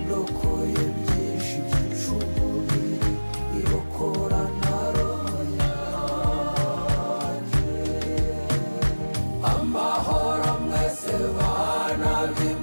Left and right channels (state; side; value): inverted; both; correlation -1.00